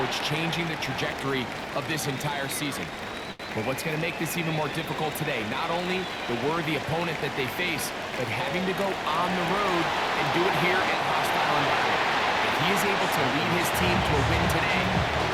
changing the trajectory of this entire season. But what's going to make this even more difficult today, not only the worthy opponent that they face, but having to go on the road and do it here in a hostile environment. If he is able to lead his team to a win today,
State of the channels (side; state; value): both; identical; correlation 1.00